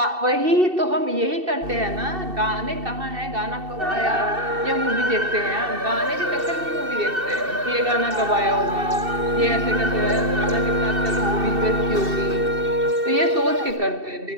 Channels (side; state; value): left; late; 2.7 ms